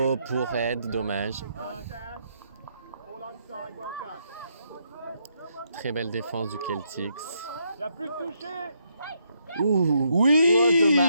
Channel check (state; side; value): inverted; both; correlation -0.76